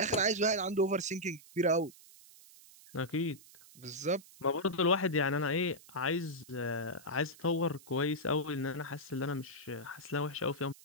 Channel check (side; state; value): right; noise; hiss, 22 dB below the sound